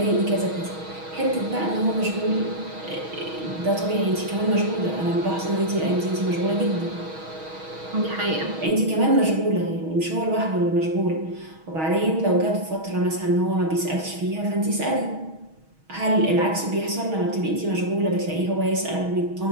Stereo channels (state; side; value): late; left; 6.3 ms